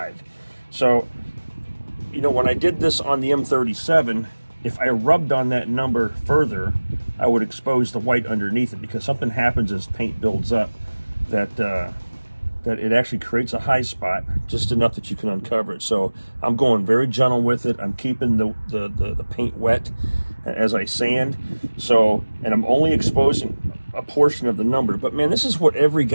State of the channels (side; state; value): both; inverted; correlation -1.00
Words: So, when I did this on the M37, if I rubbed on that number further, I would expose the white underneath it, because something happens as paint builds up that it actually creates a high spot, just enough that you can uncover it. So I'm going very gentle with it. I'm keeping the paint wet as I sand. And I'm only exposing a portion of the number. But man, this is what every